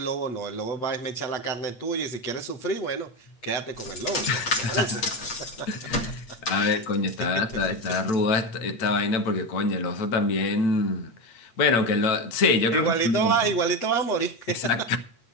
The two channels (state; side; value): late; right; 8.4 ms